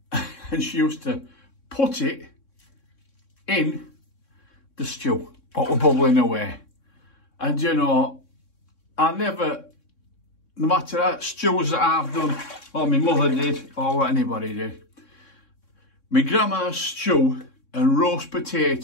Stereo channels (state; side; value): late; right; 3.6 ms